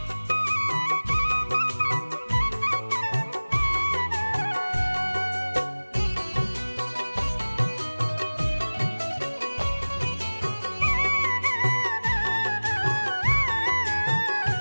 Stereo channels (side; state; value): both; inverted; correlation -1.00